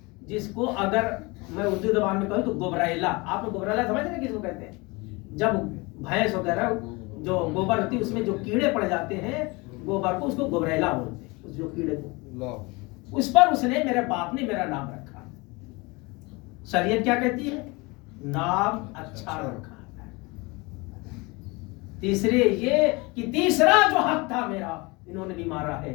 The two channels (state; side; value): quieter; right; 25.7 dB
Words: جس کو اگر میں اردو زبان میں کہوں تو گبریلا. آپ نے گبریلا سمجھ رہے ہیں کس کو کہتے ہیں؟ جب بھینس وغیرہ جو گوبر ہوتی ہے اس میں جو کیڑے پڑ جاتے ہیں گوبر کو، اس کو گبریلا بولتے ہیں. اس جو کیڑے کو، اس پر اس نے، میرے باپ نے میرا نام رکھا. شریعت کیا کہتی ہے؟ نام اچھا رکھا. تیسرے یہ کہ تیسرا جو حق تھا میرا انہوں نے بھی مارا ہے